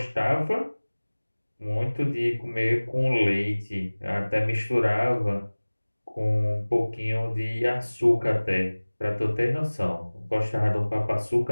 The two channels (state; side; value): inverted; both; correlation -1.00